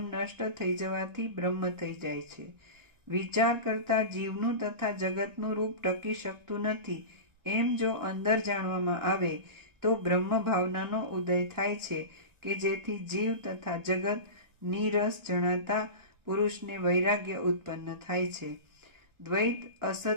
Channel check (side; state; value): left; late; 1.4 ms